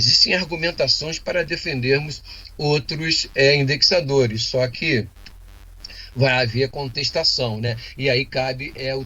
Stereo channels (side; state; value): both; identical; correlation 1.00